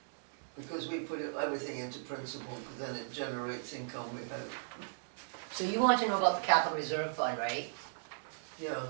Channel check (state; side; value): silent; left; digital silence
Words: Because we put everything into principal, because then it generates income, we hope. So you want to know about the capital reserve fund, right? Yeah,